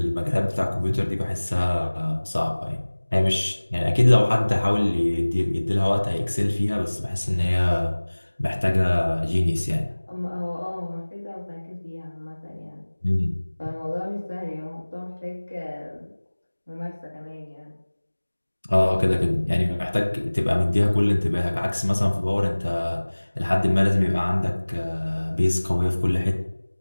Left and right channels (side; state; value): both; inverted; correlation -1.00